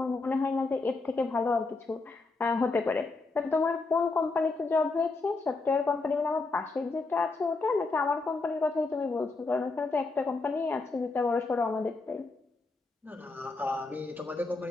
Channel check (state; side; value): quieter; right; 3.7 dB